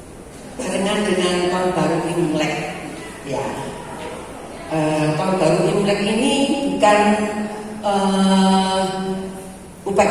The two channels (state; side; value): identical; both; correlation 1.00